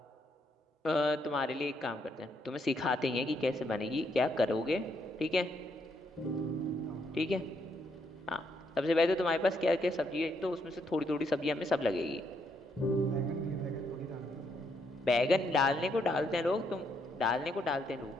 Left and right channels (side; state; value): both; normal; correlation 0.75